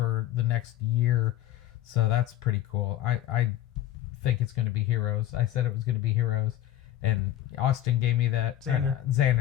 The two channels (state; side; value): quieter; right; 12.9 dB